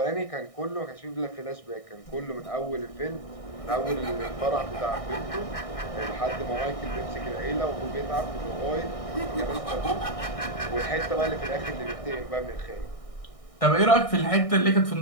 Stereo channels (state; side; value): late; right; 1.6 ms